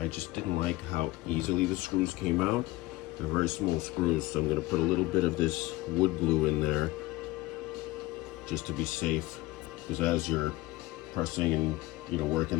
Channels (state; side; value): quieter; right; 19.5 dB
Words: just didn't like how easily the screws came out. They're very small screws, so I'm going to put a little bit of this wood glue in there just to be safe, because as you're pressing and working